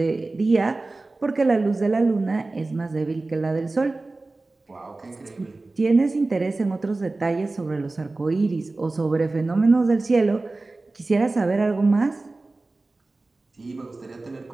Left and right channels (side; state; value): left; quieter; 3.2 dB